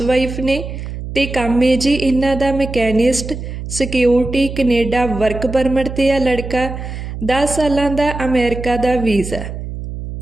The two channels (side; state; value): right; noise; hum, 8 dB below the sound